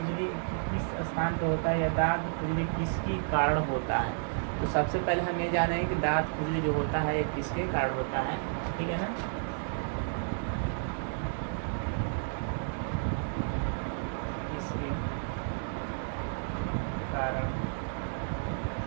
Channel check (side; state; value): left; silent; digital silence